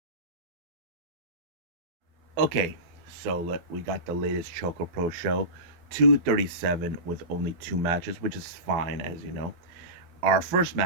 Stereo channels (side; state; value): left; late; 12 ms